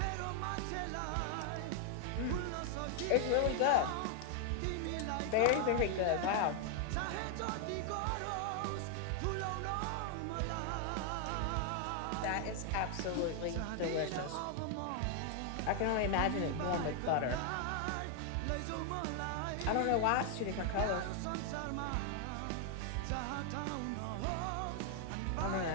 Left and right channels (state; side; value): different; both; correlation 0.00